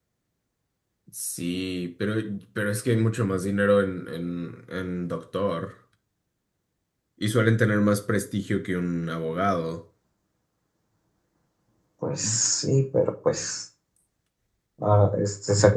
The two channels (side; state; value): both; identical; correlation 1.00